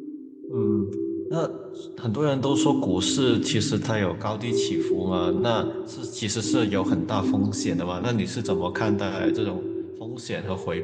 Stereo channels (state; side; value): identical; both; correlation 1.00